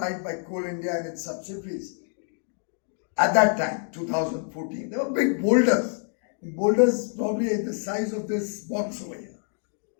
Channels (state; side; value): silent; right; 60 dB below the other